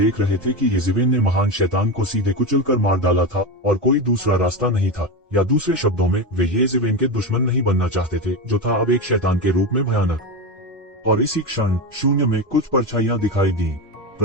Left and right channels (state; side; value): normal; both; correlation 0.17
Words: रहे थे कि येज़ेवेन ने महान शैतान को सीधे कुचलकर मार डाला था और कोई दूसरा रास्ता नहीं था, या दूसरे शब्दों में वे येज़ेवेन के दुश्मन नहीं बनना चाहते थे, जो था अब एक शैतान के रूप में भयानक। और इसी क्षण शून्य में कुछ परछाइयां दिखाई दी।